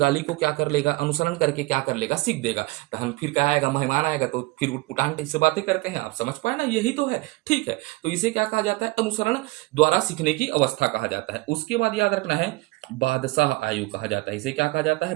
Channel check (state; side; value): quieter; left; 22.0 dB